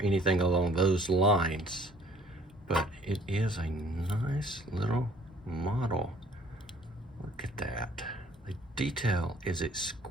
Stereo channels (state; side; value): normal; both; correlation 0.56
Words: anything along those lines, but it is a nice little model. Look at that. The detail is